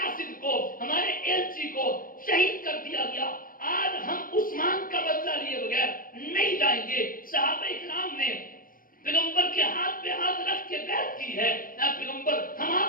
کو, ہمارے ایلچی کو شہید کر دیا گیا. آج ہم عثمان کا بدلہ لیے بغیر نہیں جائیں گے. صحابہ کرام نے پیغمبر کے ہاتھ پہ ہاتھ رکھ کے بیعت کی ہے, اے پیغمبر ہم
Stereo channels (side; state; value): right; late; 0.41 ms